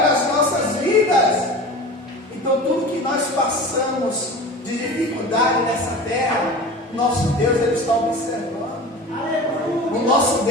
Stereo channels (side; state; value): both; normal; correlation 0.35